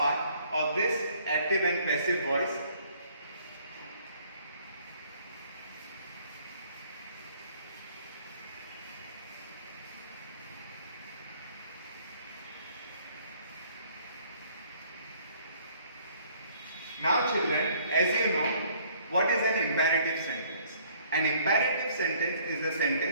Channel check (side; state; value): both; inverted; correlation -0.60